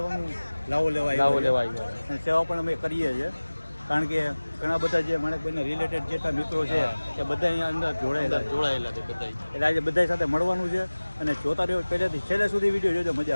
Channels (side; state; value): both; inverted; correlation -1.00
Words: લાવો લેવા આવ્યા અને સેવા પણ અમે કરીએ છીએ, કારણ કે ઘણા બધા જે માણેકભાઈના રિલેટેડ જેટલા મિત્રો છે એ બધા અહીંયા અંદર જોડાયેલા છે બધા. એટલે આજે બધા સાથે મળવાનું છે અને જોતા રહ્યો પહેલેથી છેલ્લે સુધી વિડીયો જોજો,